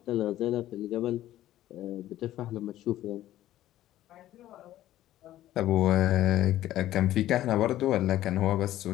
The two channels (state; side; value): quieter; right; 13.8 dB